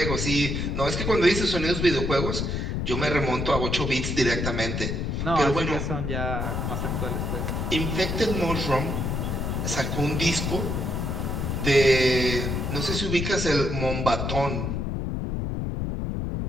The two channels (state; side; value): noise; left; rumble, 1 dB below the sound